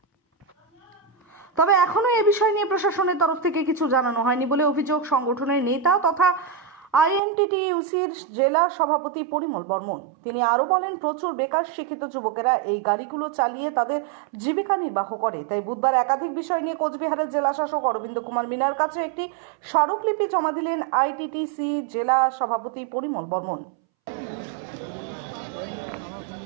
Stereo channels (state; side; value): drops out; left; at 7.2 s